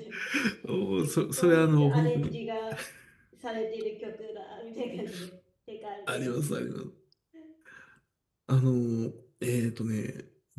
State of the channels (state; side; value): identical; both; correlation 1.00